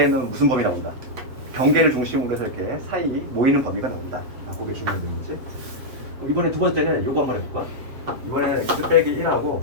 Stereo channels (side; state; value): left; late; 7.6 ms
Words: 무슨 범위 나온다? 경계를 중심으로 해서 이렇게 사이 모이는 범위가 나온다. 그게 중요한 거지. 이번에 두 번째는 요거 한번 해볼까? 이번에는 x 빼기 1하고